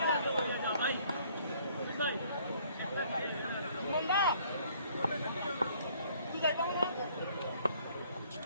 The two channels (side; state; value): both; inverted; correlation -0.60